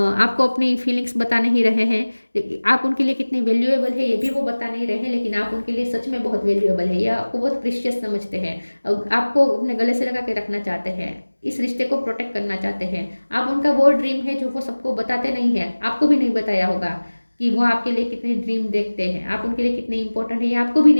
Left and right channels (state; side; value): inverted; both; correlation -1.00